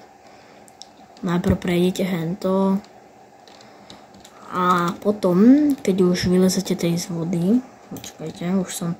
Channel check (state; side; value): identical; both; correlation 1.00